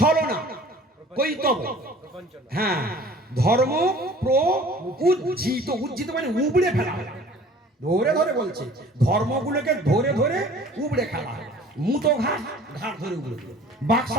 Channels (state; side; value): normal; both; correlation 0.49